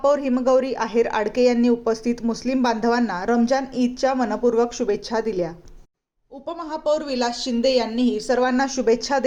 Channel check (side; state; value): both; identical; correlation 1.00